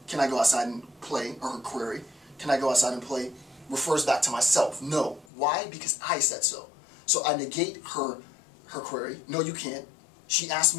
can I go outside and play, or her query, can I go outside and play, refers back to myself. No. Why? Because I said so. So I negate her query. No, you can't. She asked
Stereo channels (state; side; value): drops out; right; at 5.2 s